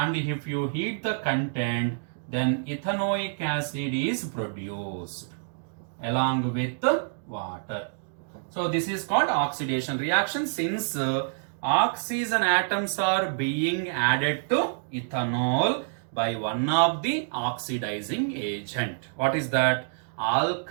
if you heat the content, then ethanoic acid is produced along with water. So this is called oxidation reaction, since oxygen atoms are being added to ethanol by one of the oxidizing agent. What is that?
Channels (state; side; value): silent; left; digital silence